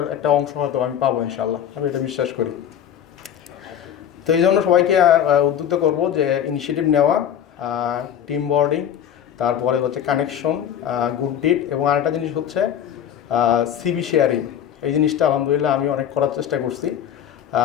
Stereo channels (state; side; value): quieter; right; 9.6 dB